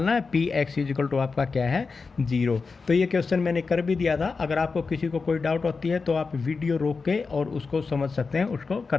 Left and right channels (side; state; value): right; quieter; 4.6 dB